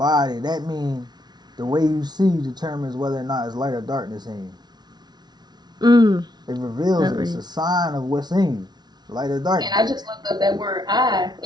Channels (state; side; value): late; left; 0.20 ms